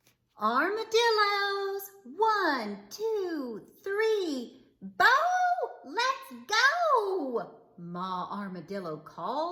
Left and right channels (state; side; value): identical; both; correlation 1.00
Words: Armadillos, 1, 2, 3, Bo, let's go! Ma Armadillo